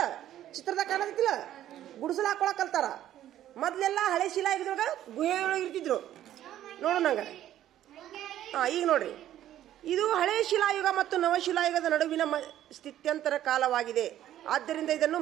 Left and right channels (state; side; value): quieter; left; 12.2 dB